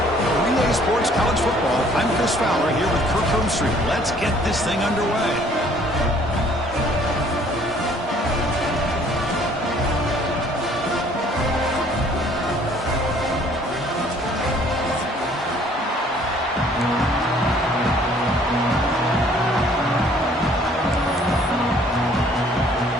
Relay Sports College Football, I'm Chris Fowler here with Kirk Herbstreit. Let's get this thing underway.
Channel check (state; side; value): normal; both; correlation 0.58